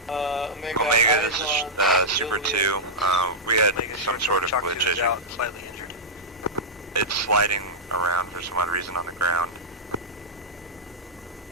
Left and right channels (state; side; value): normal; both; correlation -0.08